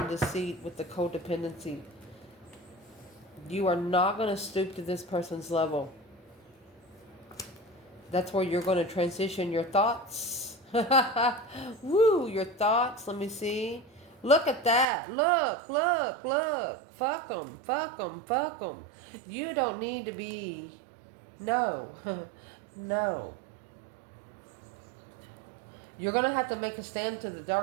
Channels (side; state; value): left; drops out; at 14.9 s